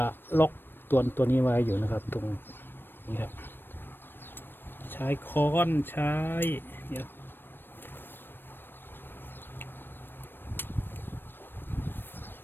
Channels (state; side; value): late; right; 0.097 ms